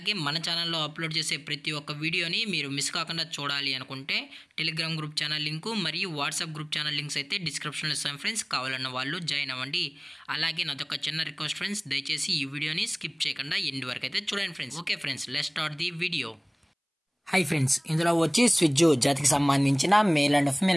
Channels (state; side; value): identical; both; correlation 1.00